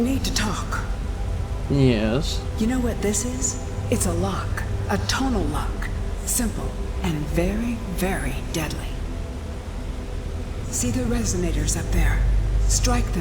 to talk. Yes. You know what this is? It's a lock. A tonal lock. Simple and very, very deadly. See the resonators up there? Strike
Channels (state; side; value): identical; both; correlation 1.00